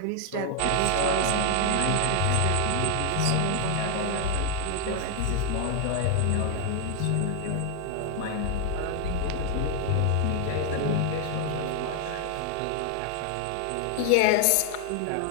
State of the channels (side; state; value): both; different; correlation 0.00